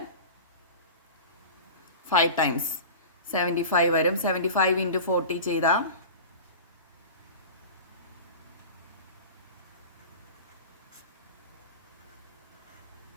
5 ടൈംസ് 75 വരും. 75 ഇൻറ്റു 40 ചെയ്താൽ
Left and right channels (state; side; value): inverted; both; correlation -0.33